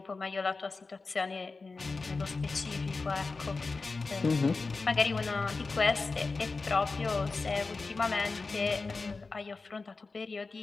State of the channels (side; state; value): right; quieter; 4.0 dB